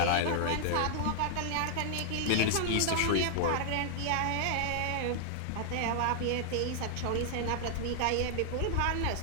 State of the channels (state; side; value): different; both; correlation 0.00